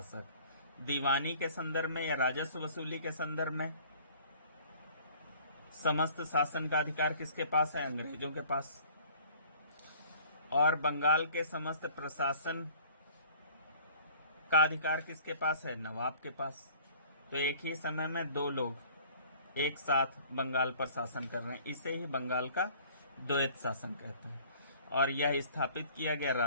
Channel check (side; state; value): both; inverted; correlation -0.51